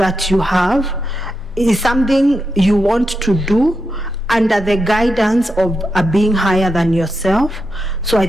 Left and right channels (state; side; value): normal; both; correlation 0.86